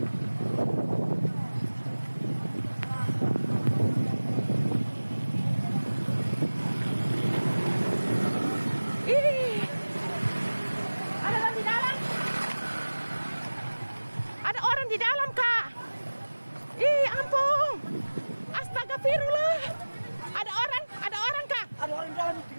Ada orang di dalam, Kak. Ih, ampun. Astagfirullah. Ada orang, Kak. Ada orang dalam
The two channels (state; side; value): inverted; both; correlation -1.00